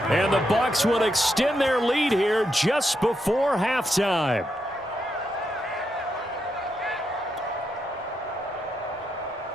And the Bucs will extend their lead here just before halftime.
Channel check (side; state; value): both; normal; correlation 0.82